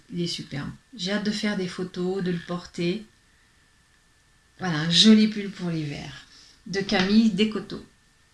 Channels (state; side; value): identical; both; correlation 1.00